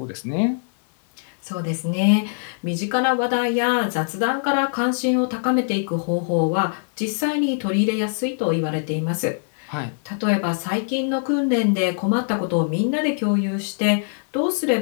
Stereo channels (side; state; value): right; silent; digital silence